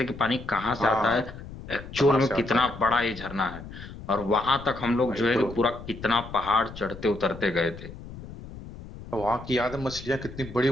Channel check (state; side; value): noise; left; rumble, 14 dB below the sound